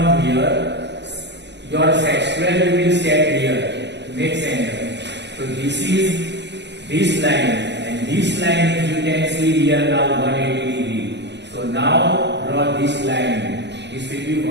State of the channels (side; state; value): left; late; 0.51 ms